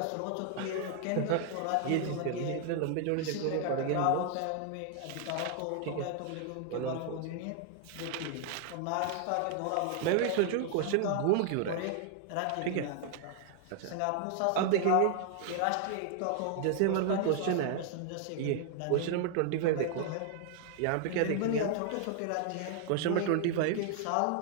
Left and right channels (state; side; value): different; both; correlation 0.00